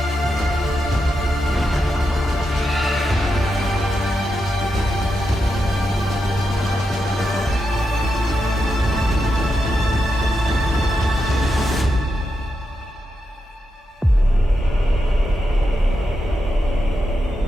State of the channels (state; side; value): normal; both; correlation 0.86